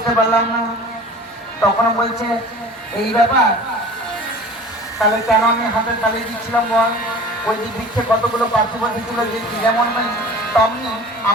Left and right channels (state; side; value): normal; both; correlation 0.42